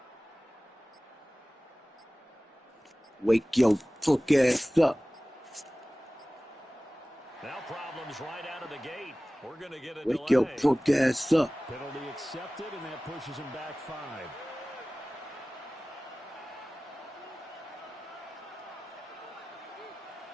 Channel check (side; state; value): both; normal; correlation 0.98